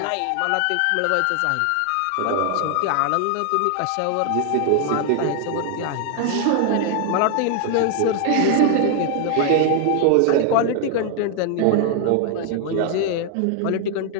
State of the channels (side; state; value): both; different; correlation 0.00